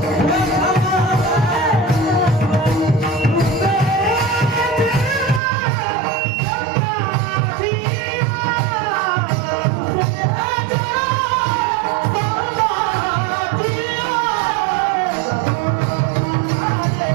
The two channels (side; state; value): left; drops out; at 5.4 s